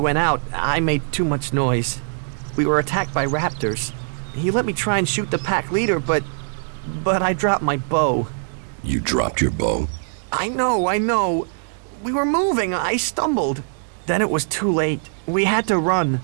out, I made too much noise. We were attacked by raptors. He let me try and shoot the pack leader, but I dropped my bow. You dropped your bow? I know. We were moving, I stumbled. Then it was too late. We had to run.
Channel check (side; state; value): left; silent; digital silence